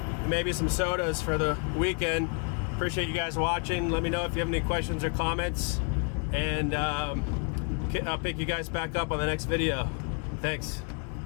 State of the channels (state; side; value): quieter; right; 39.0 dB